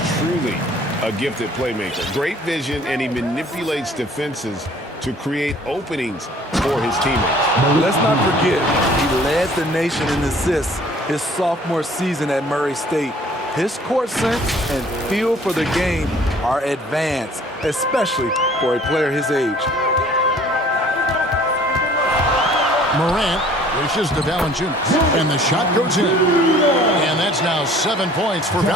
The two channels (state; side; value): normal; both; correlation 0.54